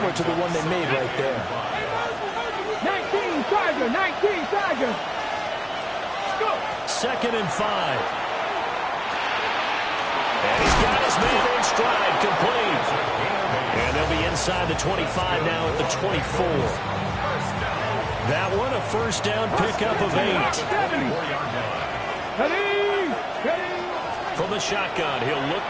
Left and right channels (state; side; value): identical; both; correlation 1.00